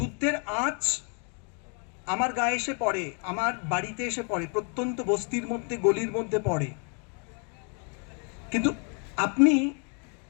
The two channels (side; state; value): right; quieter; 38.9 dB